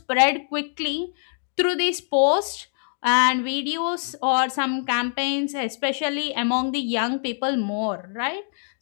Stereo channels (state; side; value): silent; right; digital silence